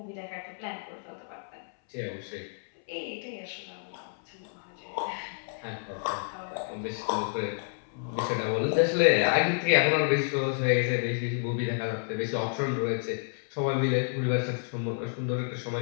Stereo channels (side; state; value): right; silent; 58 dB below the other